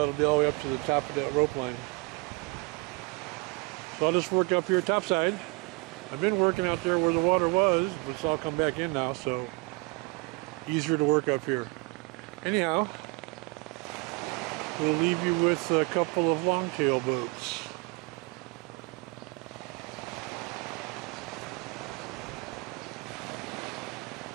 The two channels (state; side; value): quieter; left; 26.9 dB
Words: be all the way up to the top of that rope line. So I'll just work up here topside. I've been working out there where the water was, but it's all come back in now, so easier to work up here. Anyhow, we'll leave you with a couple of longtail boats.